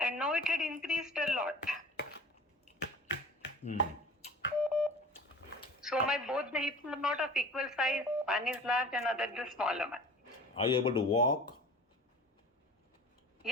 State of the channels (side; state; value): both; normal; correlation 0.41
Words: And now it had increased a lot. So both the hips are not of equal size. One is large and other the smaller one. Are you able to walk?